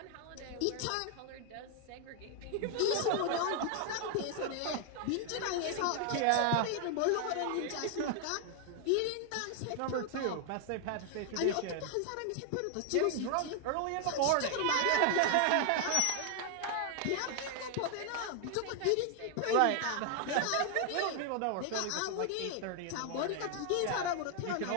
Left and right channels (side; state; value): both; different; correlation 0.00